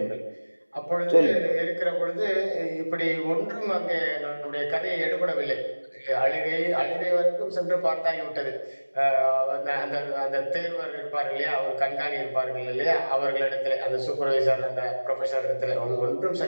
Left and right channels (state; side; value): inverted; both; correlation -1.00